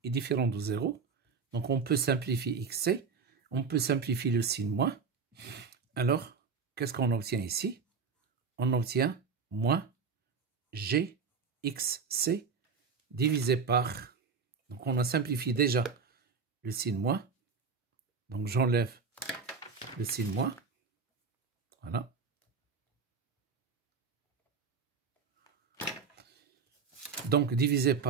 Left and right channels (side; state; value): left; quieter; 5.4 dB